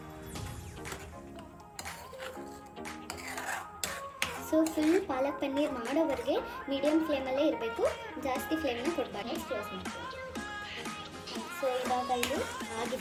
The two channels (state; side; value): identical; both; correlation 1.00